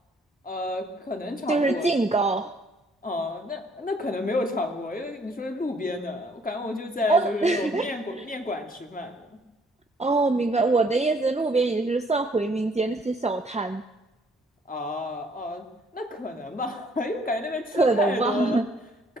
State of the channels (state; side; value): normal; both; correlation 0.63